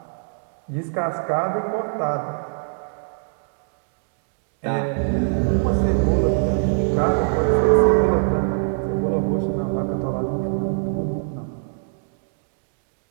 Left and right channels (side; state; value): left; silent; digital silence